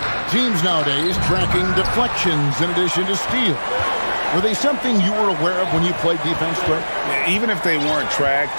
Teams nowadays tracking deflections in addition to steals. Were they something you were aware of when you played defense, Greg? Even if they weren't tracked,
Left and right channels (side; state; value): both; inverted; correlation -1.00